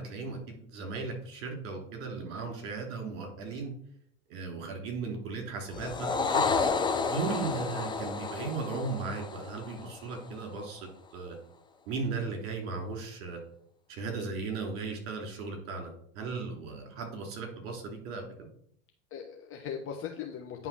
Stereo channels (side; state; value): both; normal; correlation 0.24